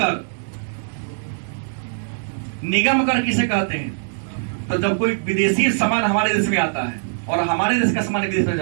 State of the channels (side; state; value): left; silent; digital silence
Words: निगम कर किसे कहते हैं? तो जब कोई विदेशी सामान हमारे देश में आता है और हमारे देश का सामान विदेश में